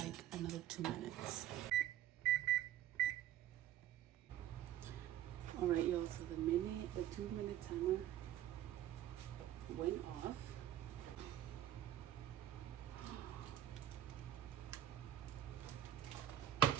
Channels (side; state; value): left; quieter; 11.9 dB